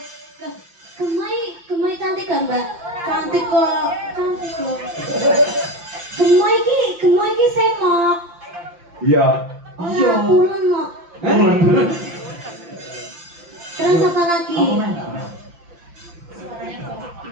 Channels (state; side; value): late; left; 5.8 ms